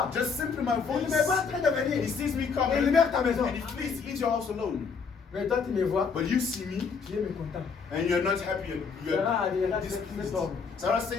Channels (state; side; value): quieter; right; 5.5 dB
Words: Just simply my Il voice. me voit en train de He venir. sees me Et il coming, libère ta maison. and he leaves your house alone. Mais toi, tu me vois, But you see me, tu es mécontent. and you're not happy, and you're Sarah displeased. homme. Sarah